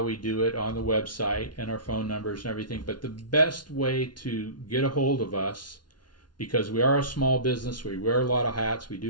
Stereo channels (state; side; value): late; right; 0.70 ms